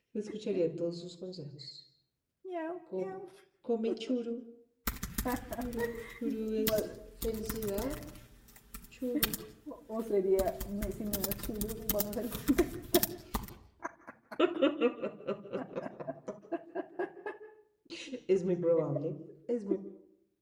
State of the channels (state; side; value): identical; both; correlation 1.00